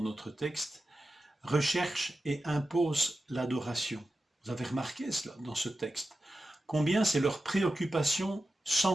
notre texte, recherche et impose l'adoration. Vous avez remarqué cela dans ce texte. Combien c'est leur préoccupation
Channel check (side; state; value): both; normal; correlation 0.92